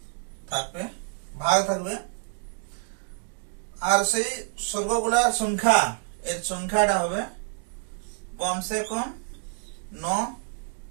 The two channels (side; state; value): left; silent; 55 dB below the other